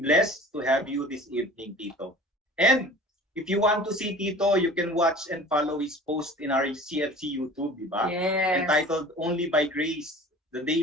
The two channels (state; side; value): normal; both; correlation 0.42